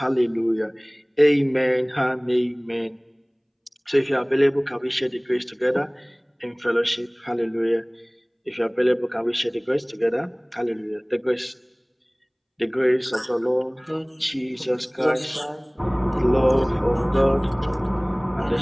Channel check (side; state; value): both; identical; correlation 1.00